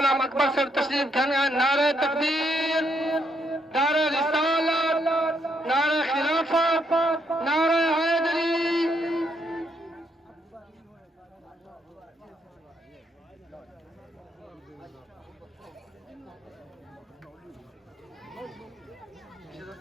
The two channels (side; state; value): both; normal; correlation 0.75